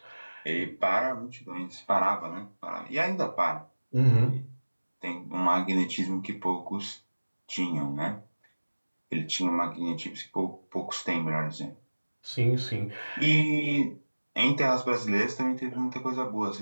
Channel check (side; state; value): both; inverted; correlation -1.00